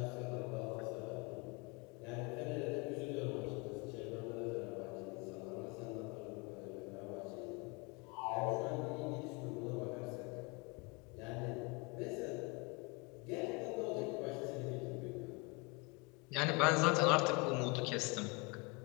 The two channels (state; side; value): quieter; right; 29.3 dB